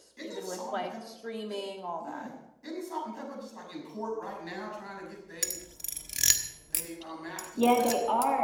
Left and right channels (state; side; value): identical; both; correlation 1.00